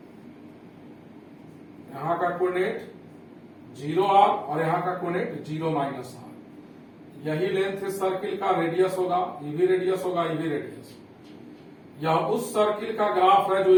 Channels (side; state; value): both; identical; correlation 1.00